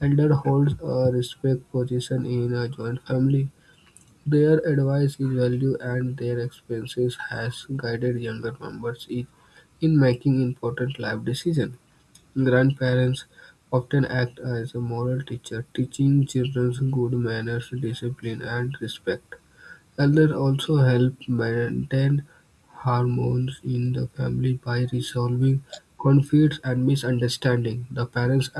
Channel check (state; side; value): identical; both; correlation 1.00